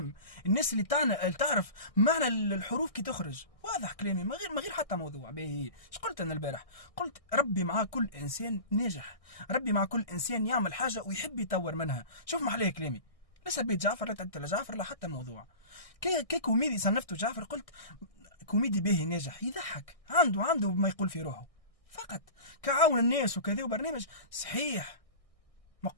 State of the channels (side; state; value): right; late; 1.6 ms